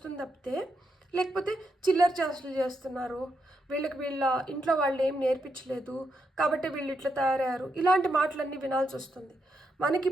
తప్పితే, లేకపోతే చిల్లర చేష్టలు చేస్తున్నారు, వీళ్ళ ఇంట్లో వాళ్ళు ఏం నేర్పించలేదు కాబట్టి వీళ్ళు ఇట్లా తయారయ్యారు, ఇలాంటి మాటలన్నీ వినాల్సి వస్తుంది. మనకి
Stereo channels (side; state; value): both; normal; correlation 0.82